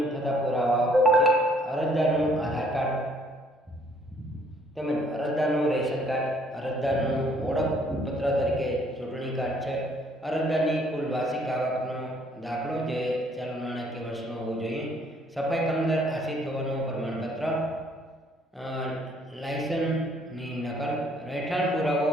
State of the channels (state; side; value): normal; both; correlation 0.63